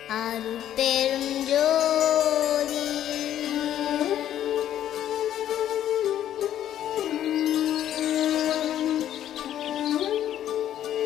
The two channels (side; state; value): right; quieter; 11.3 dB